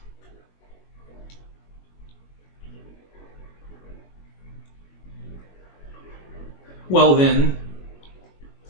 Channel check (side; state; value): right; late; 21 ms